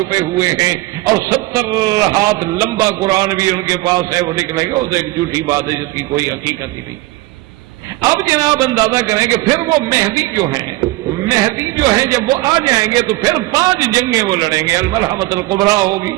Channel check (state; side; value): quieter; left; 19.7 dB